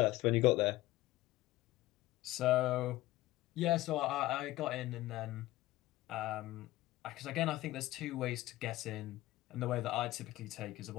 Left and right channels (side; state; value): right; quieter; 17.2 dB